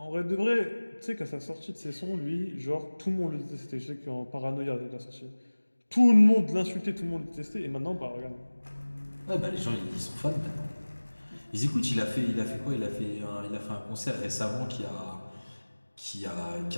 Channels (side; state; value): both; inverted; correlation -1.00